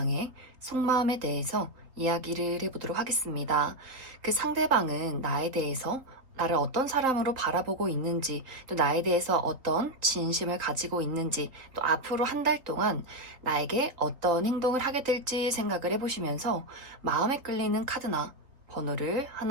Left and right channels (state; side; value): late; left; 4.0 ms